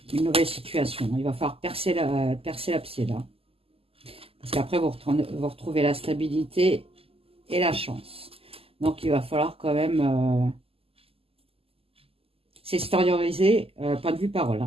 une nouvelle situation. Il va falloir percer l'abcès là. Parce qu'après, vous retrouvez la stabilité et la chance. Donc, il va falloir quand même s'extérioriser, point de vue parole.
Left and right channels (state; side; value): late; left; 0.28 ms